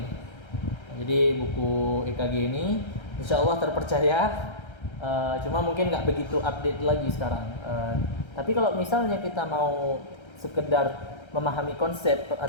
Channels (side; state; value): right; late; 1.3 ms